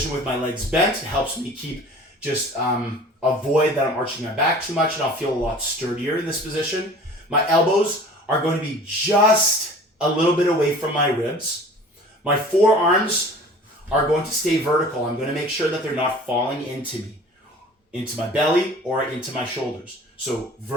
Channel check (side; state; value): both; normal; correlation 0.45